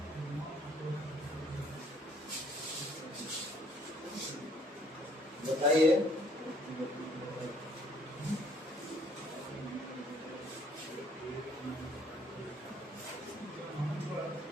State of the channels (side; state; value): both; normal; correlation 0.62